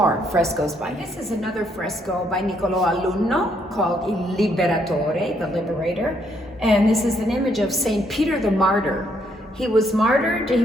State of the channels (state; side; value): normal; both; correlation 0.72